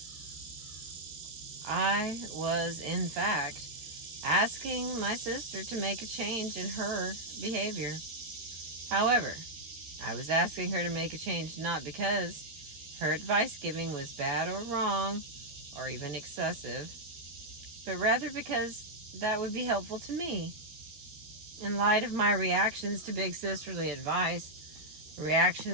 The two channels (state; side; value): late; left; 13 ms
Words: I was, in fact, asking my sister to make a change in her behavior. However, I was asking her to make a change not because her advice giving was bad or wrong or even excessive, but rather because that would be helpful to me. In light of my reactions to big sisterly advice,